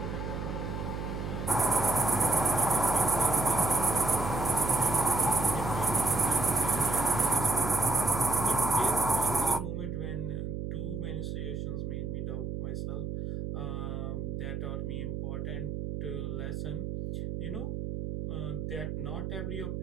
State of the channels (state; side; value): noise; right; hum, 4 dB below the sound